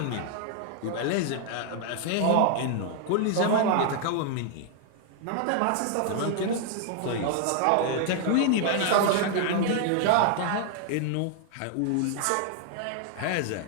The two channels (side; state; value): both; different; correlation 0.00